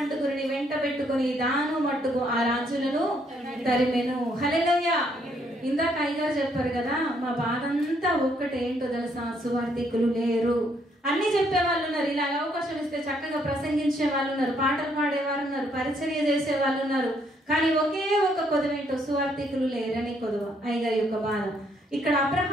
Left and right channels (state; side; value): normal; both; correlation 0.70